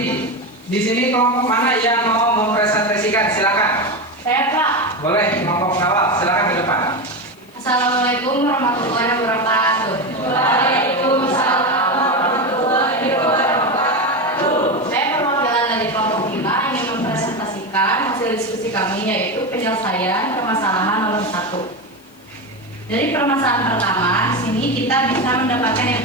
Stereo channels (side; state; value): left; noise; hiss, 29 dB below the sound